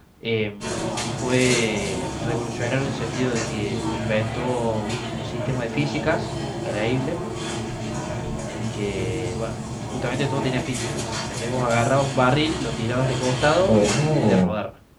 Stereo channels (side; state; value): both; identical; correlation 1.00